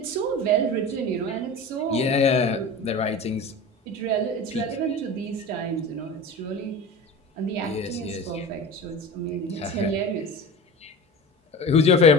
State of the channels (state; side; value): normal; both; correlation 0.32